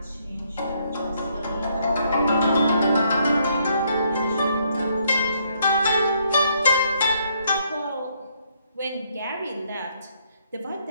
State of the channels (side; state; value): both; inverted; correlation -0.71